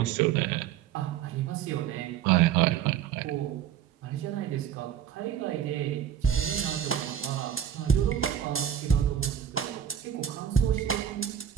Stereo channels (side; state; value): left; quieter; 9.5 dB